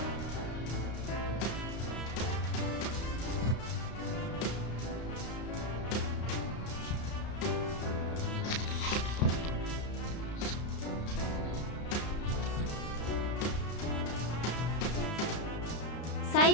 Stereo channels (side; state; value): right; late; 33 ms